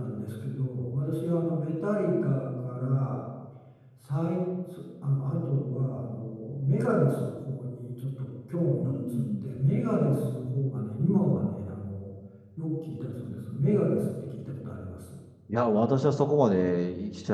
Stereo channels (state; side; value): identical; both; correlation 1.00